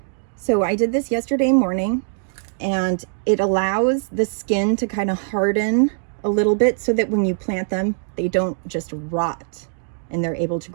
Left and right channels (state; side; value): silent; left; digital silence